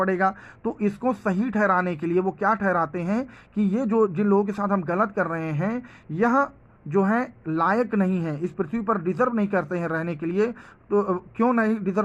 तो इसको सही ठहराने के लिए वो क्या ठहराते हैं कि ये जो जिन लोगों के साथ हम गलत कर रहे हैं, यह जो है लायक नहीं है, इस पृथ्वी पर डिजर्व नहीं करते हैं रहने के लिए। तो क्यों नहीं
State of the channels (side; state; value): both; identical; correlation 1.00